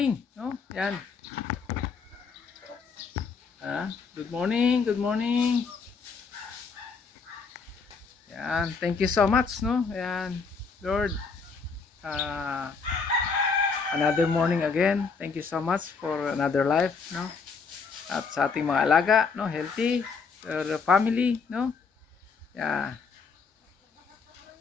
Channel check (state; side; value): quieter; right; 5.1 dB